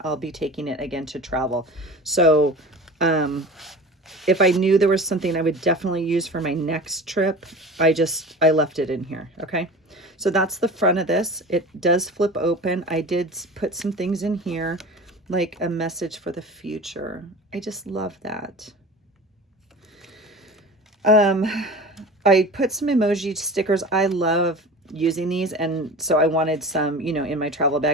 I'll be taking it again to travel. So if I knew there was something I would definitely use for my next trip, I left it in here, okay? So that's the front of this. It does flip open. I did put some things in here, like a message for the future. I just love that. I put some emoji stickers. I love using these, and so I wanted some, you know, in my travel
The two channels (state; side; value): normal; both; correlation 0.36